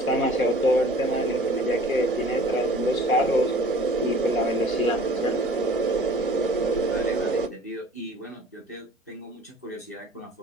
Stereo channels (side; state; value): both; normal; correlation 0.48